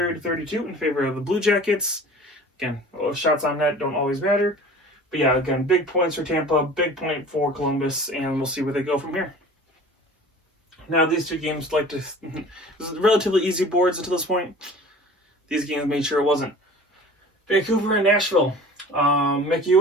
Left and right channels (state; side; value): normal; both; correlation 0.43